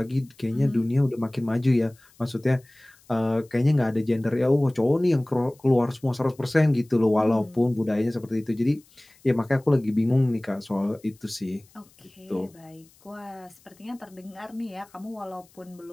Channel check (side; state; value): left; noise; hiss, 29 dB below the sound